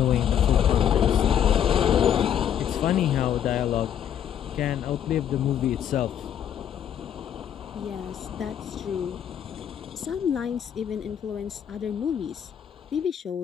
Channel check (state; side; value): quieter; right; 9.4 dB